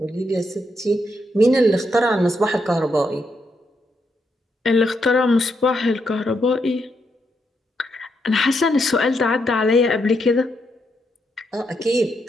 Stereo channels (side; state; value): both; normal; correlation 0.79